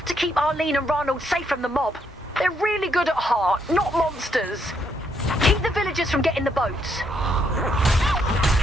to keep Arlene and Ronald safe from the mob. They're really good at heart, not monsters. Keep the villagers from getting the boats.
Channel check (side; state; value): both; normal; correlation 0.75